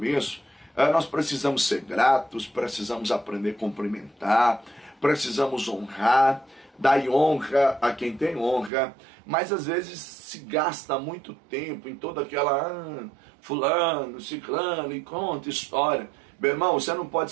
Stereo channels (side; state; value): left; drops out; at 8.7 s